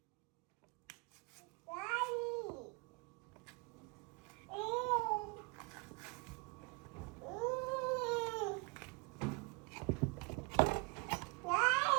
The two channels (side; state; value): left; quieter; 29.2 dB